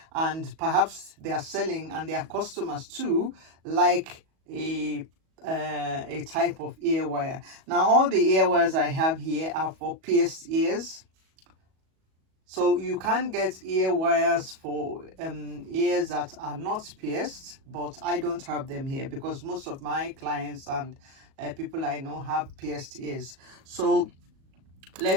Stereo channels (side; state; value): left; late; 37 ms